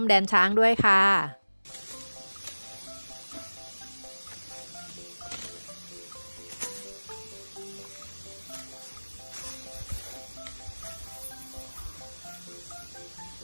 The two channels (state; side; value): inverted; both; correlation -1.00